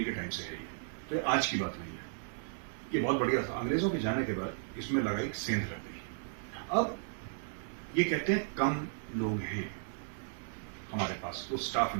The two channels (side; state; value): left; silent; 54 dB below the other